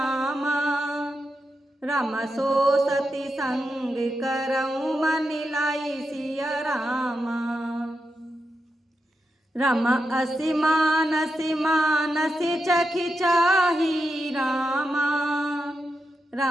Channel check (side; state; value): both; normal; correlation 0.87